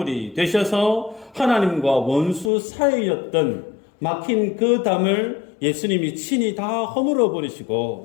되셔서 하나님과 원수 사이였던 막힌 그 담을 예수님이 친히 다 허물어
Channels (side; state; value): right; drops out; at 2.5 s